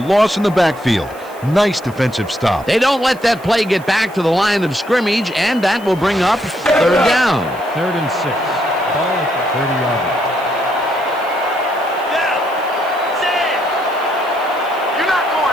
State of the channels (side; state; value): right; noise; hiss, 23 dB below the sound